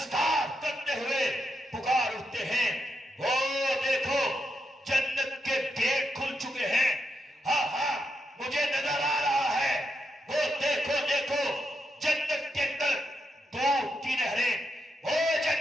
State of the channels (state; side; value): normal; both; correlation 0.84